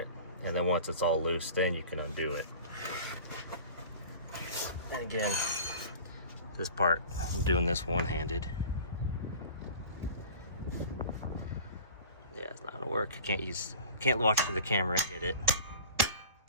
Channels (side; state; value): both; inverted; correlation -0.40